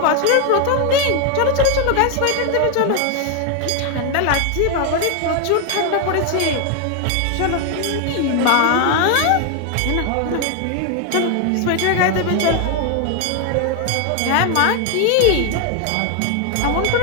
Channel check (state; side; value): different; both; correlation 0.01